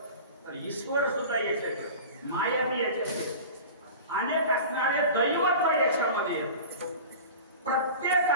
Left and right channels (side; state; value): both; inverted; correlation -0.35